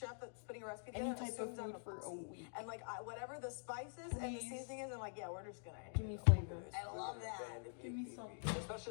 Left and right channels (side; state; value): right; silent; digital silence